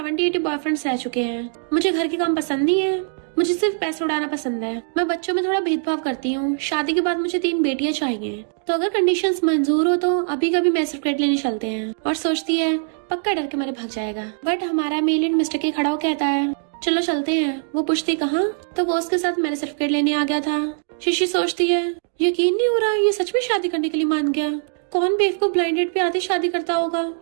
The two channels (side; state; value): left; silent; digital silence